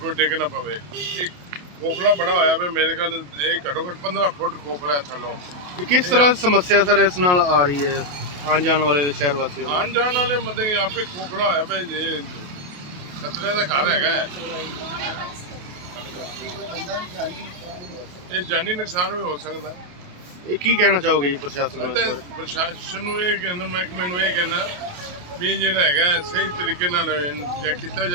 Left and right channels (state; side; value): late; left; 28 ms